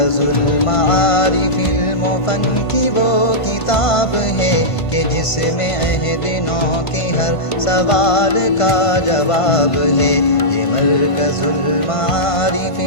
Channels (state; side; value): late; right; 1.5 ms